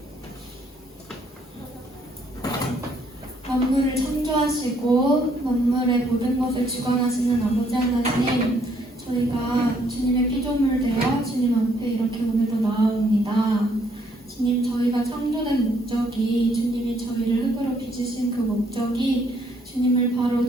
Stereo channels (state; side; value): normal; both; correlation 0.68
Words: 만물을 창조하시고 만물의 모든 것을 주관하시는 아버지 하나님, 저희가 주님의 피조물 되어 주님 앞에 이렇게 오늘도 나아옵니다. 주님, 저희가 창조된 목적이, 주님이 저희를 흙으로 빚으신 그 목적이 주님을 바로